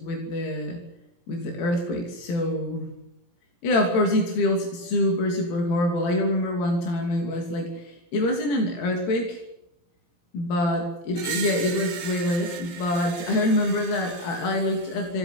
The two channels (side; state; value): right; late; 17 ms